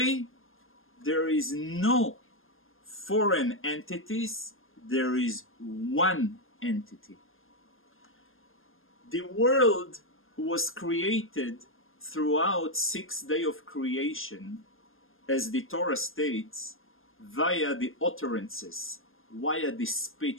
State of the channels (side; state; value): right; late; 0.60 ms